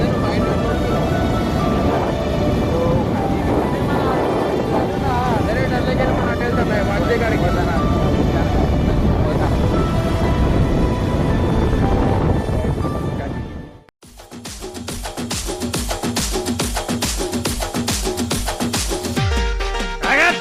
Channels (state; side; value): identical; both; correlation 1.00